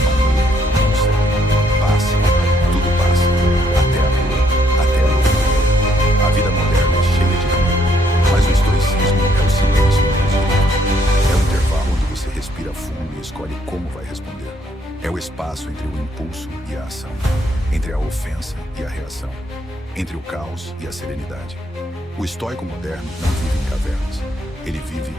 nuvem, não sei. Passa, tudo passa, até a dor, até a loucura. A vida moderna é cheia de ruído, mas o estoicismo é o silêncio entre os gritos. É o intervalo onde você respira fundo e escolhe como vai responder. É o espaço entre o impulso e a ação, entre a ofensa e a reação, entre o caos e a serenidade. O estoico moderno não vive em cavernas. Ele vive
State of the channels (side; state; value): both; normal; correlation 0.70